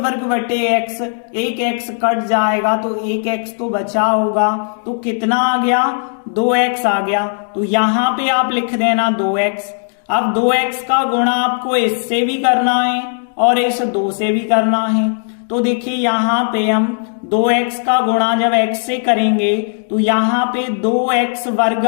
बटे x, एक x कट जाएगा तो एक x तो बचा होगा। तो कितना आ गया, 2x आ गया। तो यहाँ पे आप लिख देना 2x। अब 2x का गुणा आपको इससे भी करना है और इस 2 से भी करना है। तो देखिए यहाँ पे हम 2x का गुणा जब x से करेंगे तो यहाँ पे 2x वर्ग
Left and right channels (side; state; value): right; silent; digital silence